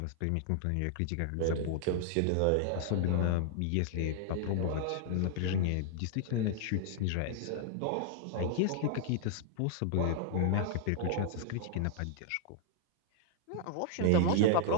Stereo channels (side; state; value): both; different; correlation 0.00